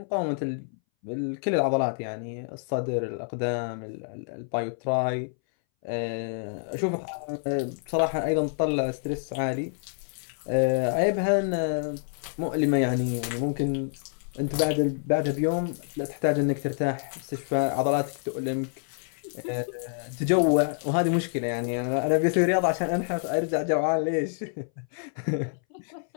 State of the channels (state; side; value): silent; right; 60 dB below the other